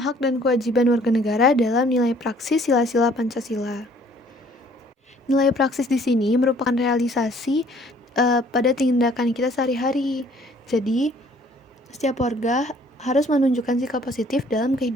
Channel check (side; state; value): both; normal; correlation 0.58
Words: dan kewajiban warga negara dalam nilai praksis sila-sila Pancasila. Nilai praksis di sini merupakan realisasi pada tindakan kita sehari-hari. Jadi, setiap warga harus menunjukkan sikap positif dalam